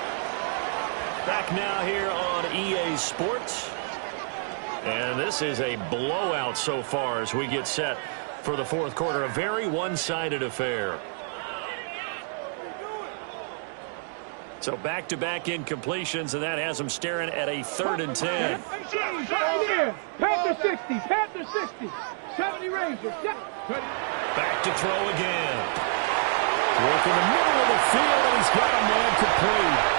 Back now here on EA Sports. And this is a blowout so far as we get set for the 4th quarter. A very one-sided affair. So back-to-back incompletions, and that has them staring at a 3rd and 10. Panther 60. Panther 60. 70 Rangers. Back to throw again. Work in the middle of the field, and he's got a man complete.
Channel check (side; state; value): left; silent; 60 dB below the other